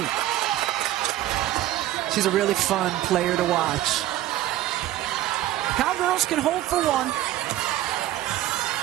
She's a really fun player to watch. Cowgirls can hold for 1.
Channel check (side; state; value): left; quieter; 14.0 dB